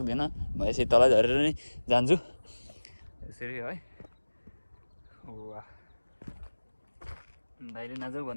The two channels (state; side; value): inverted; both; correlation -1.00